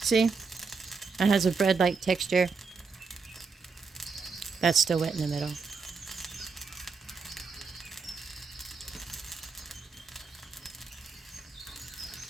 See? It has a bread-like texture. That's still wet in the middle.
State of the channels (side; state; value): left; quieter; 4.8 dB